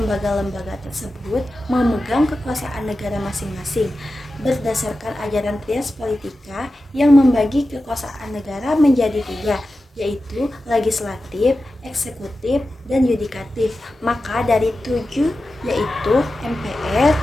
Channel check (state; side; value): normal; both; correlation 0.93